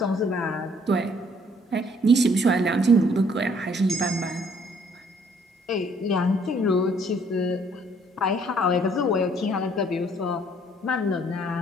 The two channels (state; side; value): normal; both; correlation 0.63